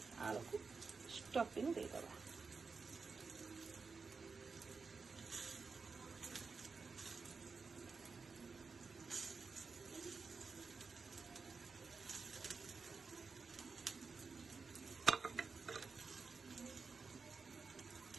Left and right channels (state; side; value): quieter; left; 4.7 dB